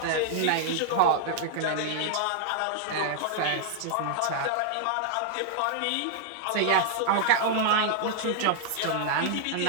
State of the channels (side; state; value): both; different; correlation 0.00